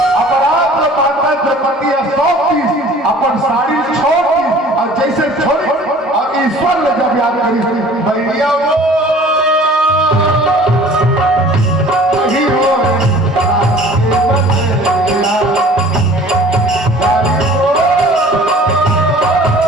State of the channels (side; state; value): both; normal; correlation 0.48